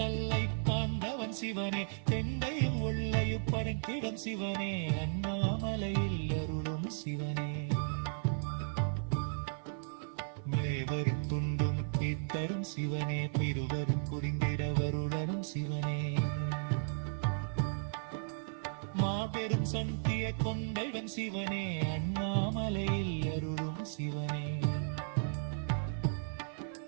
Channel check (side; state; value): left; silent; 54 dB below the other